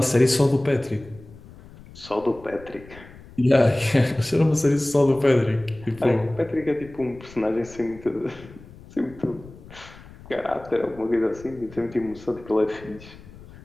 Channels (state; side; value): noise; left; rumble, 20 dB below the sound